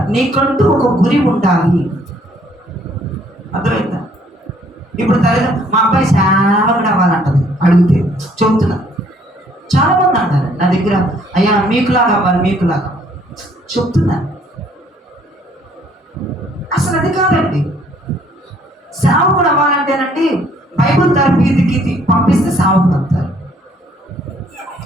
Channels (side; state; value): both; normal; correlation 0.63